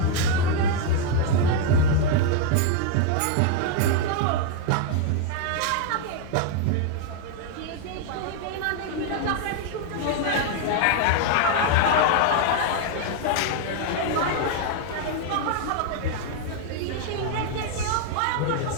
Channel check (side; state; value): both; different; correlation 0.00